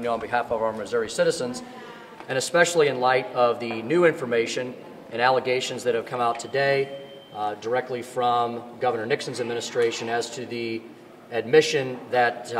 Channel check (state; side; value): identical; both; correlation 1.00